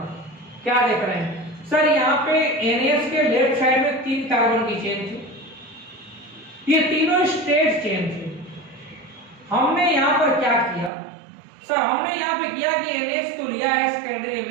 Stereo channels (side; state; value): left; drops out; at 10.9 s